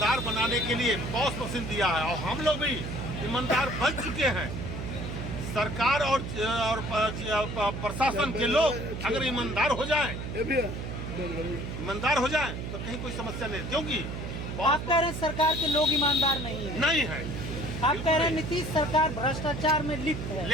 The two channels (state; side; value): noise; right; hum, 6 dB below the sound